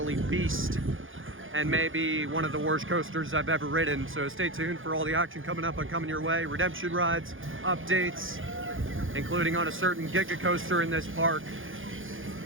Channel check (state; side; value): late; left; 0.58 ms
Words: beast, and maybe one of the worst coasters I've ever ridden. So stay tuned for all the action coming up and coming your way. Redemption rides, updates, including on a certain Giga coaster in this park.